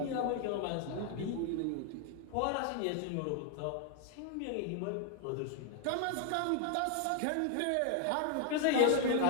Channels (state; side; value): different; both; correlation 0.00